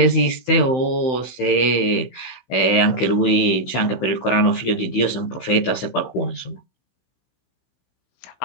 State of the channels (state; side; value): late; right; 16 ms